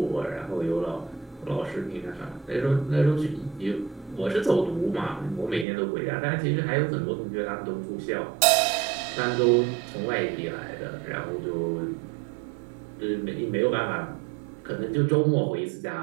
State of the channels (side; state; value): left; drops out; at 5.7 s